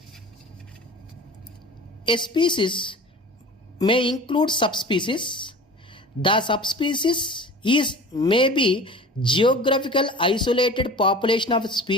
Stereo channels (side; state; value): both; normal; correlation 0.39